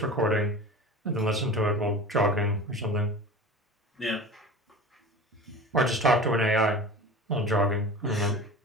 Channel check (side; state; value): both; normal; correlation 0.36